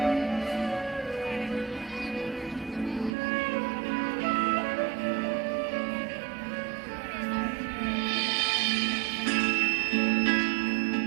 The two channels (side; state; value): left; drops out; at 3.1 s